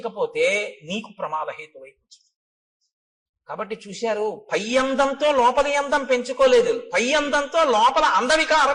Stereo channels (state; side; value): identical; both; correlation 1.00